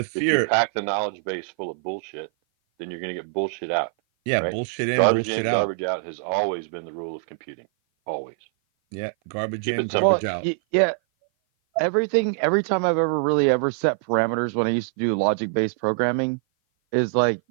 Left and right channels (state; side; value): silent; left; 56 dB below the other